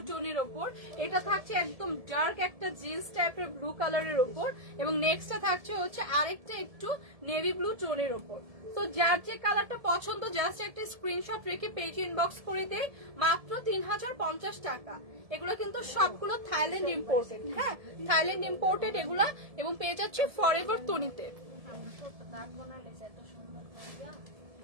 টোনের ওপর, এটা থাকছে একদম ডার্ক একটা জিন্স টাইপের ব্লু কালারের ওপর, এবং নেক্সটটা থাকছে হচ্ছে আরেকটা একটু নেভি ব্লু টোনের ওপর। তো যার যে কালারটা পছন্দ জাস্ট একটা স্ক্রিনশট রেখে পেজে ইনবক্স করে দেয়, মাত্র 3050 টাকা। এগুলো কিন্তু সবগুলো থাইল্যান্ড ইম্পোর্টেড। হ্যাঁ, থাইল্যান্ড ইম্পোর্টেড এগুলা, এবং পেয়ে যাচ্ছে ফরএভার তনিতে।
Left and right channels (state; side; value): late; left; 1.7 ms